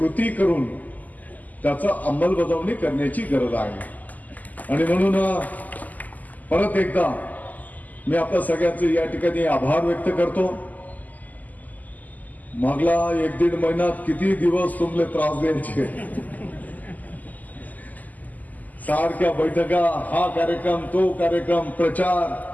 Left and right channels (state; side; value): late; right; 0.080 ms